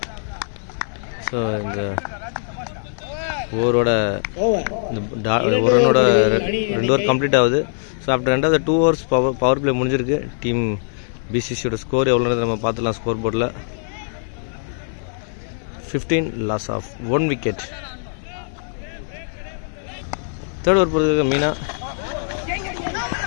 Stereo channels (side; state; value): right; silent; digital silence